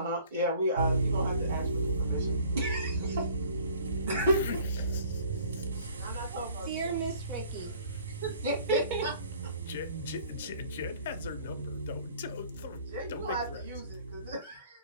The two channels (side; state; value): both; inverted; correlation -0.53